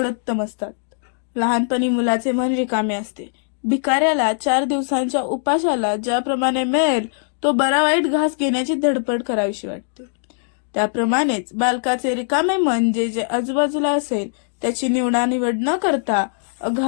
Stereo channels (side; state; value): right; silent; digital silence